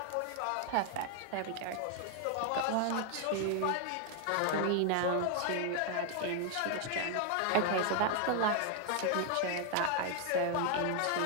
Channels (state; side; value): different; both; correlation 0.00